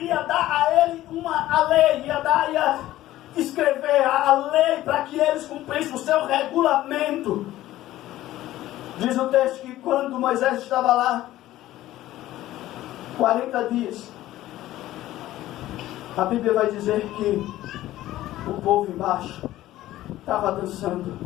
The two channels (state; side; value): quieter; right; 14.9 dB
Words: dar a ele a lei, ia escrever a lei para que eles cumprissem o seu regulamento. Diz o texto que quando Moisés estava lá 40 dias, a Bíblia vai dizer que o povo embaixo estava dançando,